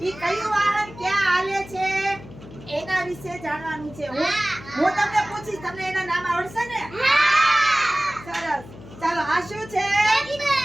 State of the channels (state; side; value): noise; left; hum, 17 dB below the sound